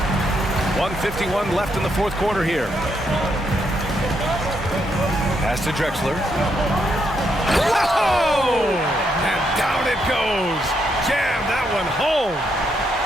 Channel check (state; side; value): normal; both; correlation 0.77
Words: 1:51 left in the fourth quarter here. Pass to Drexler. Whoa! And down it goes. Jam that one home.